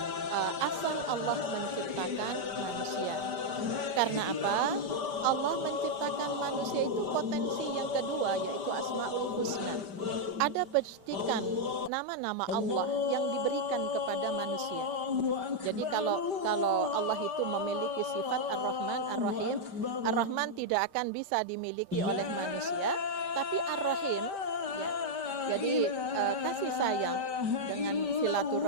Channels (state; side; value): late; left; 5.1 ms